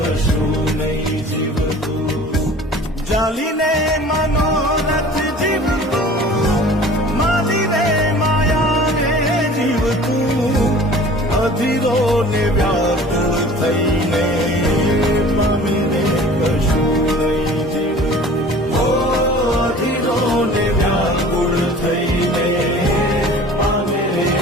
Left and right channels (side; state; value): both; normal; correlation 0.45